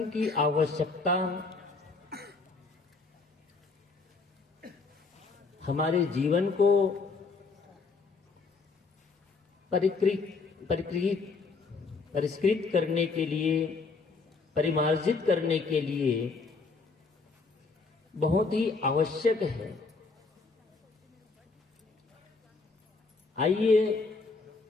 की आवश्यकता हमारे जीवन को परिष्कृत करने के लिए, परिमार्जित करने के लिए बहुत ही आवश्यक है। आइए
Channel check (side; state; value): right; quieter; 4.3 dB